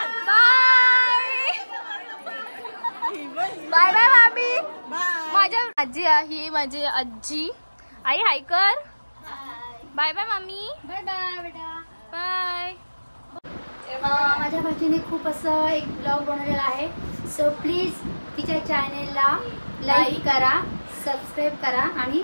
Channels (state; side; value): inverted; both; correlation -1.00